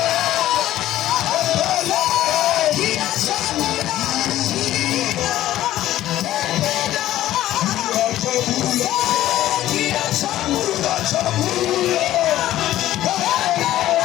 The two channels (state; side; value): quieter; right; 14.0 dB